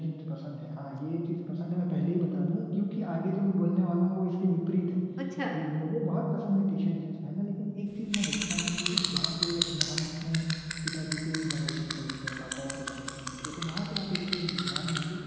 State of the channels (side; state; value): both; identical; correlation 1.00